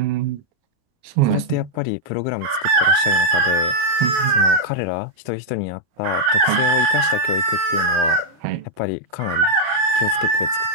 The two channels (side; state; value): left; late; 32 ms